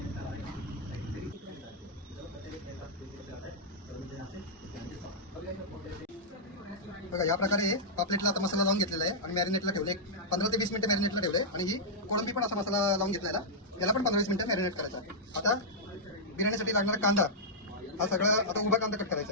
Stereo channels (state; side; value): normal; both; correlation -0.09